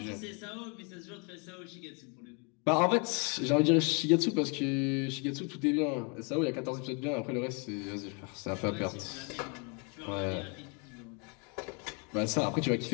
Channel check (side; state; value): right; quieter; 34.3 dB